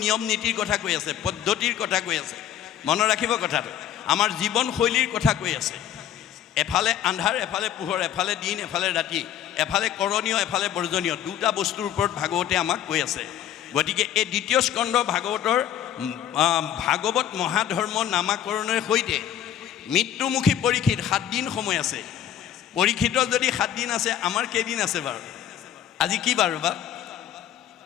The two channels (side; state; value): right; quieter; 10.5 dB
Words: নিয়ম নীতিৰ কথা কৈ আছে, পদ্ধতিৰ কথা কৈ আছে। মনত ৰাখিব কথাটো, আমাৰ জীৱনশৈলীৰ কথা কৈ আছে। এফালে আন্ধাৰ, এফালে পোহৰ, এফালে দিন, এফালে ৰাতি, এফালে কৰণীয়, এফালে বৰ্জনীয়, দুটা বস্তুৰ ওপৰত ভাগৱতে আমাক কৈ আছে। গতিকে এই দ্বিতীয় স্কন্ধ ভাগৱতৰ ভাগৱত মহাধৰ্ম নামাকৰণৰ সৈতে মৃত্যুমুখী পৰীক্ষিত 7 দিন সময় আছে। পৰীক্ষিতৰ যদি 7 দিন আছে, আমাৰ কেইদিন আছে বাৰু? আজি কি বাৰ বা?